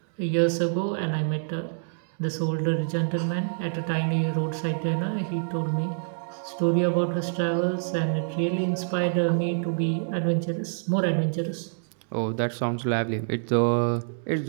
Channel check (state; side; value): silent; left; digital silence